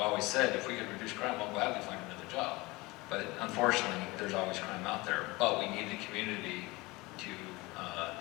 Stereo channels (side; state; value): right; quieter; 22.7 dB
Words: said if we could reduce crime, I'll gladly find another job. But unfortunately, there's always crime out there. But we need the community to